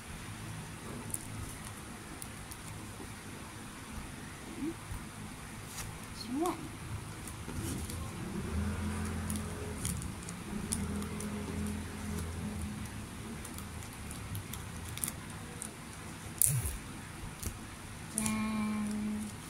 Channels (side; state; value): both; identical; correlation 1.00